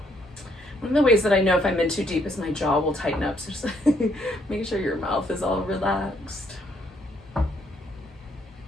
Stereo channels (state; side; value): normal; both; correlation 0.70